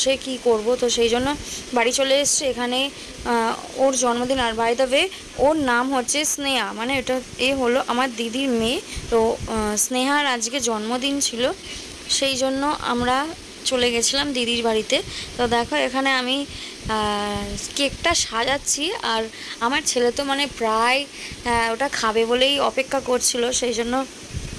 কি করব? তো সেই জন্য বাড়ি চলে এসেছি। এখানে ওর জন্মদিন, আর বাই দ্য ওয়ে ওর নাম হচ্ছে স্নেহা, মানে এটা হলো আমার দিদির মেয়ে। তো স্নেহার আজকে জন্মদিন ছিল, সেই জন্য আমরা চলে গেছিলাম দিদির বাড়িতে। তো দেখো, এখানে আমি কেকটা সাজাচ্ছি, আর আমার ছেলে তো মানে প্রায় ওটা খাবে বলেই অপেক্ষা করছিল, সেই জন্য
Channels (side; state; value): both; identical; correlation 1.00